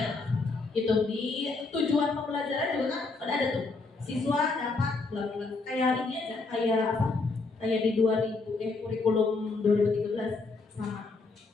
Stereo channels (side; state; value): right; quieter; 3.8 dB